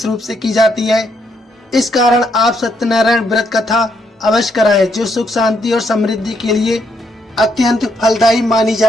रूप से की जाती है। इस कारण आप सत्यनारायण व्रत कथा अवश्य कराएं, जो सुख, शांति और समृद्धि के लिए अत्यंत फलदायी मानी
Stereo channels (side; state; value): both; normal; correlation 0.75